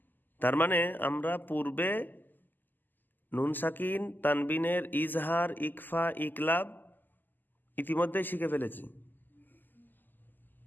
তার মানে আমরা পূর্বে নুন সাকিন তানবিনের ইজহার, ইকফা, ইকলাব ইতিমধ্যেই শিখে ফেলেছি।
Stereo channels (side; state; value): right; late; 0.088 ms